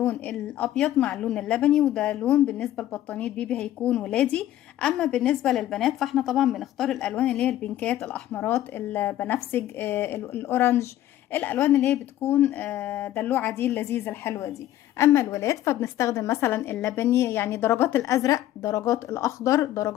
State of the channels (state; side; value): quieter; right; 13.2 dB